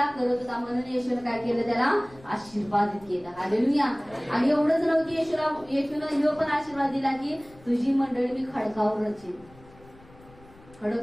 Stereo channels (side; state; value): left; noise; rumble, 24 dB below the sound